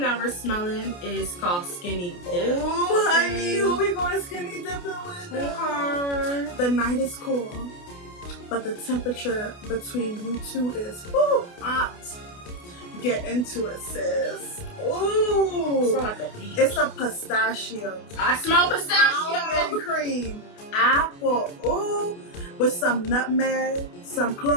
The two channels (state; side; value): late; right; 28 ms